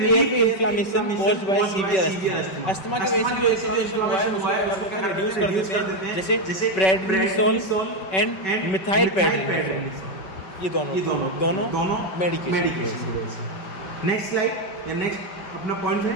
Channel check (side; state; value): right; late; 5.3 ms